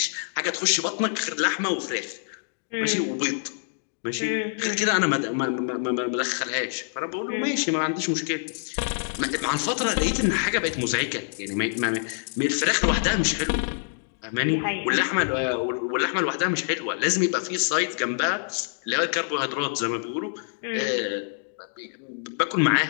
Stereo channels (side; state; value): right; silent; digital silence